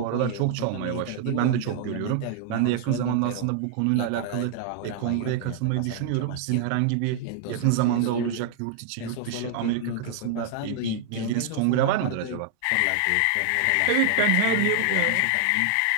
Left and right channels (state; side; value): different; both; correlation 0.00